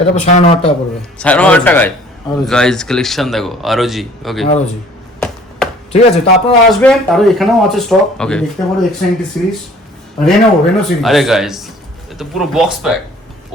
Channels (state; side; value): normal; both; correlation 0.53